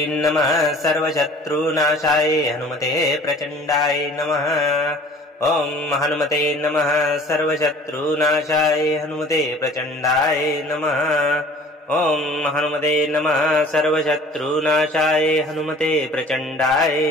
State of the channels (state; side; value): normal; both; correlation 0.49